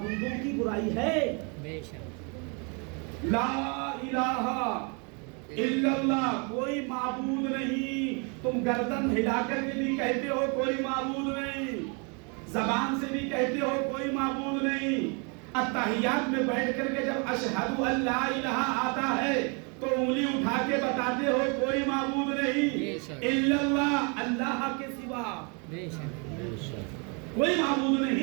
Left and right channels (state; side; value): quieter; left; 34.4 dB